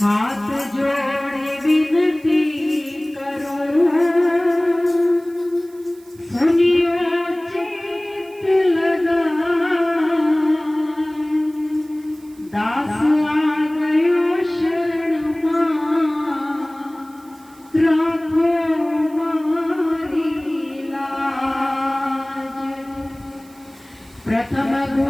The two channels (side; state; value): right; noise; hiss, 27 dB below the sound